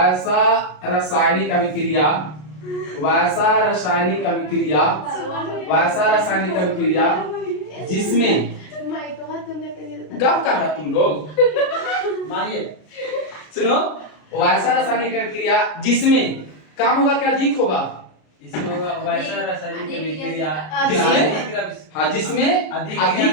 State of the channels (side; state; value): right; late; 33 ms